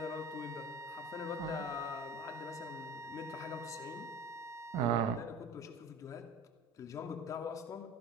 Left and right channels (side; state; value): both; normal; correlation 0.37